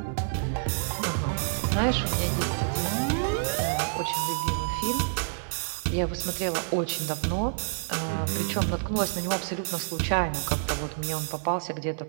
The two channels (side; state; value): left; silent; 59 dB below the other